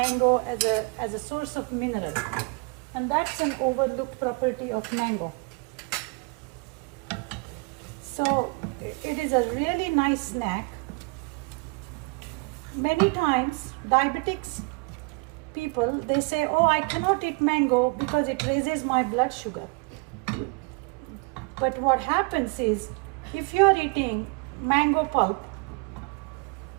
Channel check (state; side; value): quieter; left; 30.6 dB